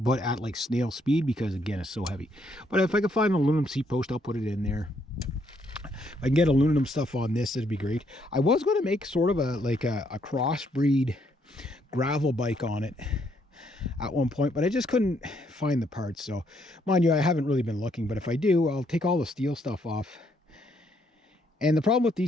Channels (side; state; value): both; normal; correlation 0.72